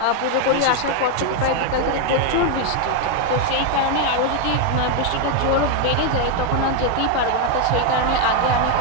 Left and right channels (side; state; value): both; different; correlation 0.01